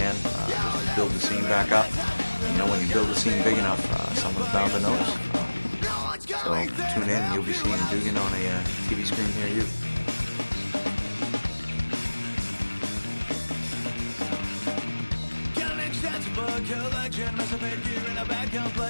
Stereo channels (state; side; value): inverted; both; correlation -1.00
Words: just to build the scene back up. And you know, when you build the scene big enough, someone's bound to notice. So tune in and you'll be seeing Dugen on a TV screen near you. Collection, massive head gear and a bad